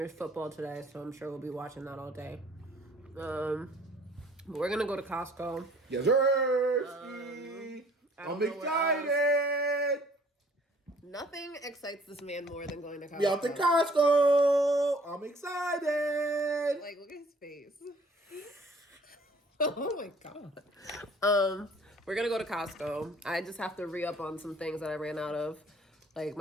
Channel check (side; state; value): both; normal; correlation 0.56